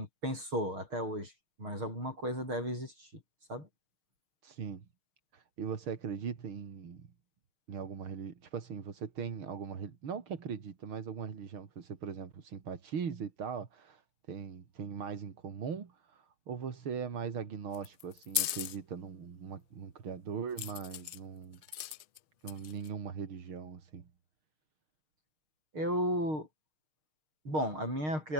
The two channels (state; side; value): late; left; 6.5 ms